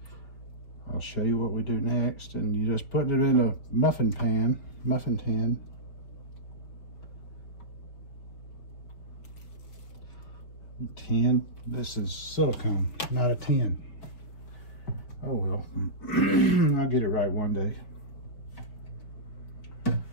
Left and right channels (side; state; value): right; late; 5.1 ms